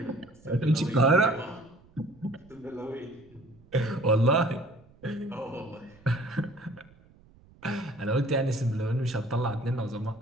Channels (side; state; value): right; noise; rumble, 27 dB below the sound